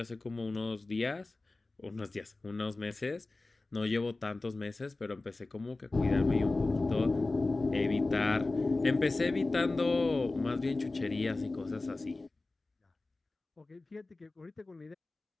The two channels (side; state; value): right; quieter; 3.2 dB